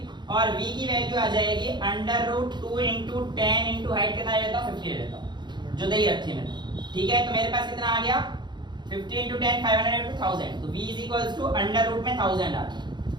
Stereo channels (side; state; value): left; late; 0.21 ms